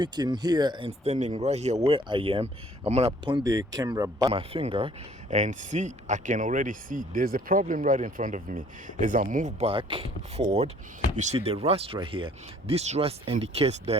here and standing right here where I am, I'm gonna point the camera by my finger and see, I can already see there's a problem right in front of me. As I move back forward, you see the rust right here. This rust indicates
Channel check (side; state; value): both; normal; correlation 0.57